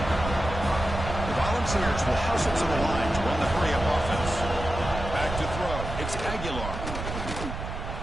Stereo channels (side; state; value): right; noise; rumble, 7 dB below the sound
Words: The Volunteers will hustle to the line to run the hurry-up offense. Back to throw. It's Aguilar.